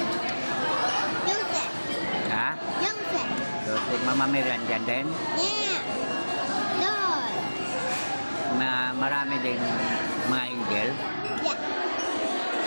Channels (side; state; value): both; inverted; correlation -1.00